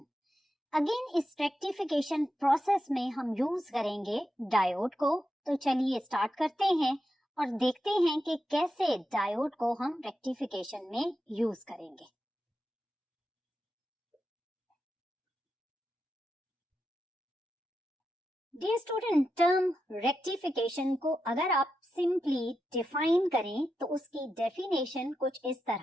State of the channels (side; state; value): both; normal; correlation 0.88